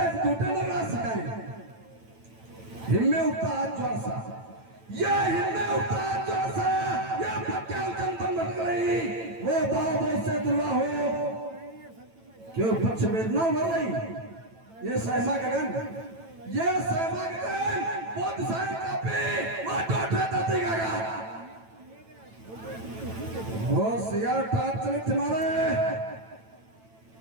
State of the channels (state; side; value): late; left; 9.0 ms